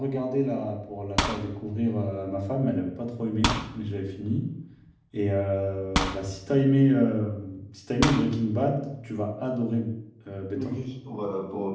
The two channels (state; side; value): identical; both; correlation 1.00